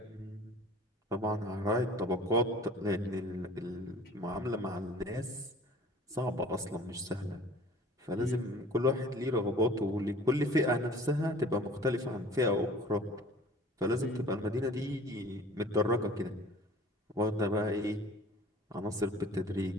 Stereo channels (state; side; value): normal; both; correlation 0.47